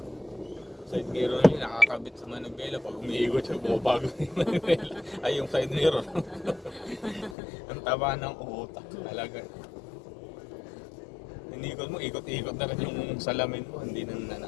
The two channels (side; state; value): right; drops out; at 7.4 s